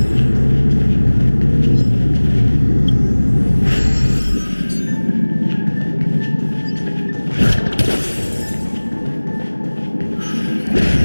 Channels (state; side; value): inverted; both; correlation -1.00